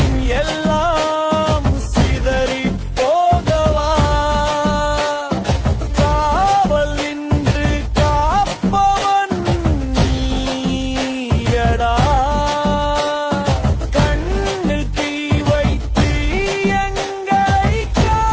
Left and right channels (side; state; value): both; identical; correlation 1.00